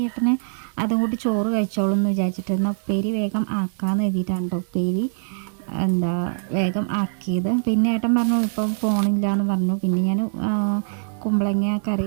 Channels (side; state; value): left; silent; digital silence